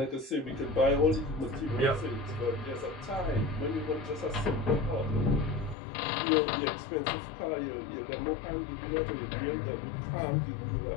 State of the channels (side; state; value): right; drops out; at 5.8 s